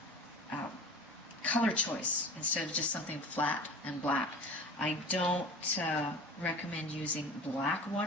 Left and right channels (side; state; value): both; normal; correlation 0.37